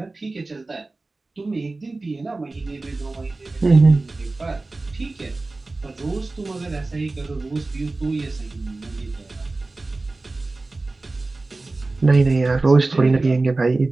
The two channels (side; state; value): left; quieter; 3.3 dB